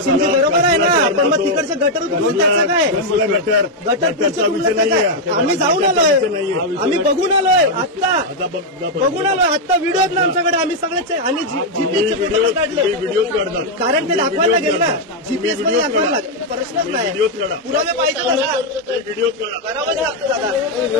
बरोबर आहे ना, पण मग तिकडचे गटर उचलून त्याचं काय? गटरचा विषय नाहीये, आम्ही जाऊन आलोय, आम्ही बघून आलोय, आत्ता बघून आलोय, आत्ता व्हिडिओ आहेत ना आमच्याकडे, आम्ही सगळ्याचे, आणि जीपीएसचे फोटो काढले, व्हिडिओ काढतात, कारण ते दाखवायला लागेल ना, जीपीएस मध्ये दाखवायला लागेल, प्रश्नच नाही, पुरावे पाहिजे दादा, व्हिडिओ करावंच लागतं दादा।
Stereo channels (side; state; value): both; normal; correlation 0.00